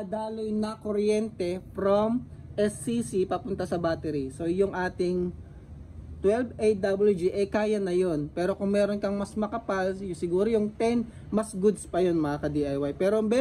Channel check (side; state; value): both; identical; correlation 1.00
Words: na kuryente from SCC papunta sa battery. So yung ating 12 AWG kaya na yun. Pero kung meron kang mas makapal, siguro yung 10 mas goods pa yun mga ka-DIY. Pero